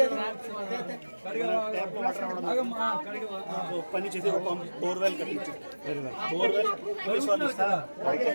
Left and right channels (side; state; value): both; inverted; correlation -1.00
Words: పని చేసి ఒక బోర్వెల్ కట్టించు బోర్వెల్